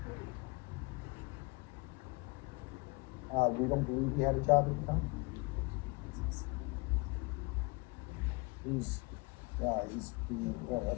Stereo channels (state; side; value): quieter; right; 27.8 dB